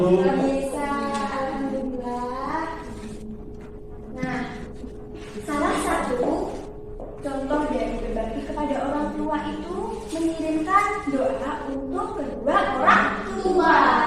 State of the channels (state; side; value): identical; both; correlation 1.00